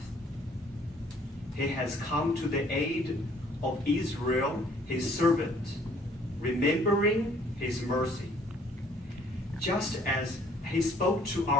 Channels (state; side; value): normal; both; correlation 0.59